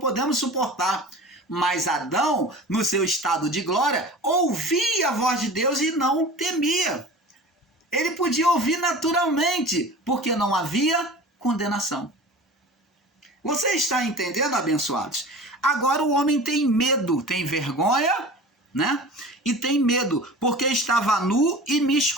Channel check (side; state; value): both; normal; correlation 0.37